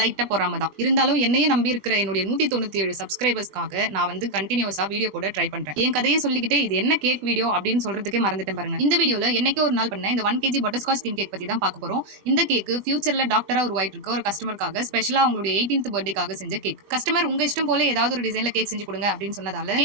பொறாம தான். இருந்தாலும் என்னையே நம்பி இருக்கிற என்னுடைய 197 சப்ஸ்கிரைபர்ஸ்க்காக நான் வந்து கண்டினியூஸா வீடியோ போட ட்ரை பண்றேன். என் கதையை சொல்லிக்கிட்டே இது என்ன கேக் வீடியோ அப்படின்னு சொல்றதுக்கே மறந்துட்டேன் பாருங்க. இந்த வீடியோல என்னைக்கு ஒரு நாள் பண்ண இந்த 1 kg பட்டர்ஸ்காட்ச் தீம் கேக் பத்தி தான் பார்க்க போறோம். இந்த கேக் ஃபியூச்சர்ல டாக்டரா உருவாயிட்டு இருக்க ஒரு கஸ்டமருக்காக ஸ்பெஷலா அவங்களுடைய 18th பர்த்டேக்காக செஞ்ச கேக். கஸ்டமர் உங்க இஷ்டம் போல ஏதாவது ஒரு டிசைன்ல கேக் செஞ்சு கொடுங்க அப்படின்னு சொன்னதால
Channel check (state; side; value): late; left; 20 ms